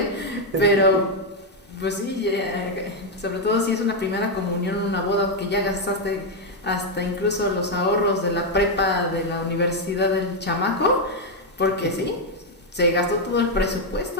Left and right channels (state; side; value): normal; both; correlation 0.01